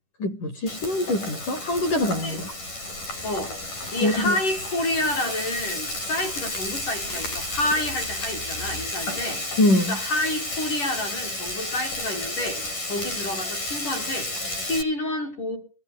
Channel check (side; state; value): right; late; 10 ms